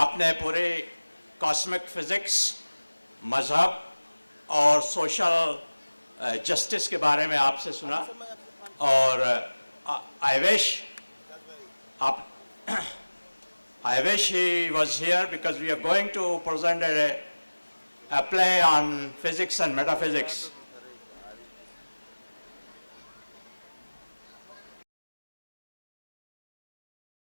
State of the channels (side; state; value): both; inverted; correlation -1.00